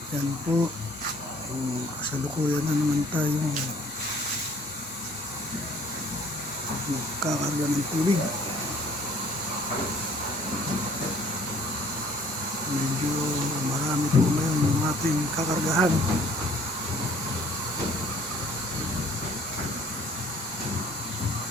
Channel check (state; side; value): normal; both; correlation 0.56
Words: Yan po. Kasalukuyan na naman tayo kakarga ng tubig. Medyo marami po ngayon yung ating kakargahan.